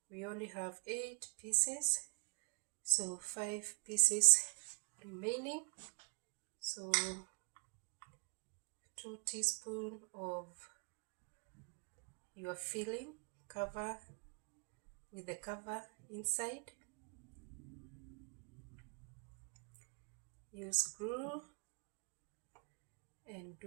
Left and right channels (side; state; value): left; quieter; 35.5 dB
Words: We only have 8 pieces, so 5 pieces remaining. So 2 teaspoons of your filling, cover with the cover inside. Use glue and